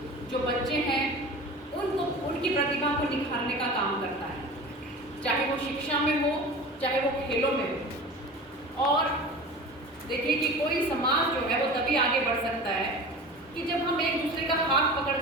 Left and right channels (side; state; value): both; normal; correlation 0.36